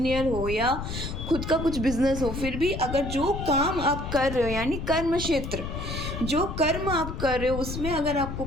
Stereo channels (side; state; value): left; noise; rumble, 6 dB below the sound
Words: हो या खुद का कुछ बिजनेस हो, फिर भी अगर जो काम आप कर रहे हो यानी कर्म क्षेत्र, जो कर्म आप कर रहे हो उसमें अगर आपको